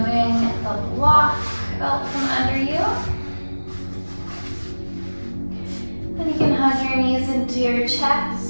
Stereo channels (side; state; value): both; inverted; correlation -1.00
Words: the block out from under you. Then you can hug your knees into your